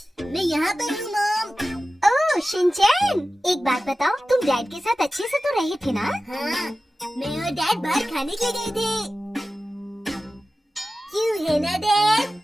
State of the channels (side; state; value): both; normal; correlation 0.95